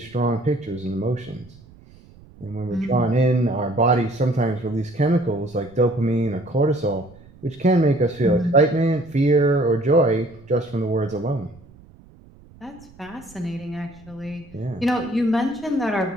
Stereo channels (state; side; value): noise; right; rumble, 24 dB below the sound